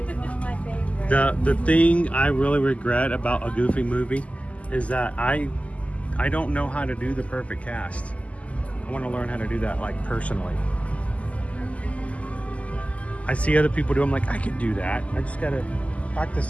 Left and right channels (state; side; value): late; right; 0.067 ms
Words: one of my favorites. The thing I really regret about a Goofy movie is that I don't know how to do the perfect cast. I want to learn how to do that, like, personally. I see other people do. I'm like, I could do that. I just gotta